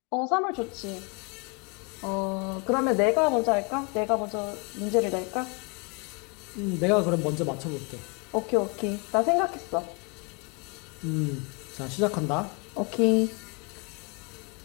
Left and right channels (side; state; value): right; quieter; 33.3 dB